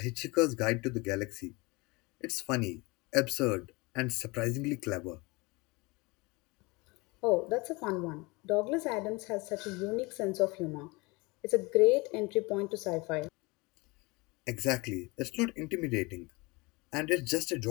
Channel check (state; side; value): quieter; right; 25.3 dB